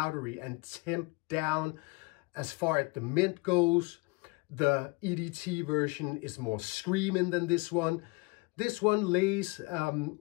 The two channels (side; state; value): right; quieter; 26.6 dB